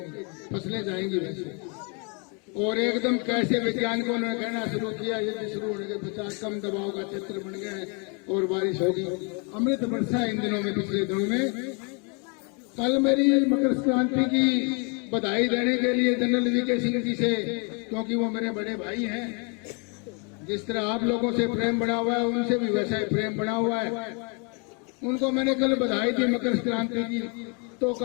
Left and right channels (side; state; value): right; quieter; 35.2 dB